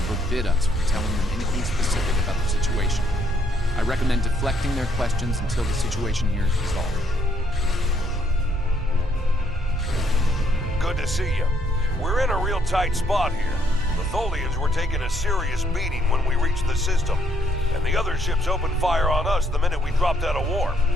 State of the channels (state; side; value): normal; both; correlation 0.70